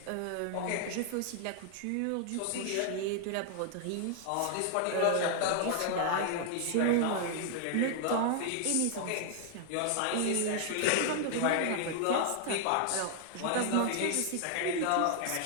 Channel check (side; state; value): both; different; correlation 0.00